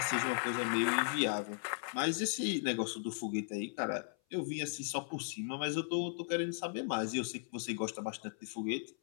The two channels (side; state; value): right; silent; 53 dB below the other